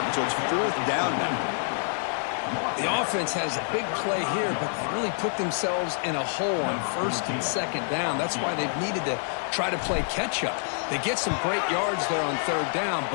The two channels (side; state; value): right; silent; digital silence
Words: so it's fourth down now. The offense has a big play here, but they really put themselves in a hole on first and second down. That's why they've needed to try to play catch-up. They get some great yards there on third down,